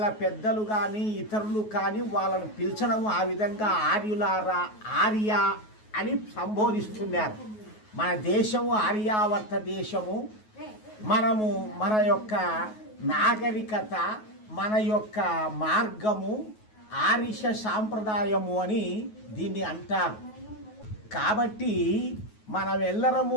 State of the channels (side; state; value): right; late; 9.4 ms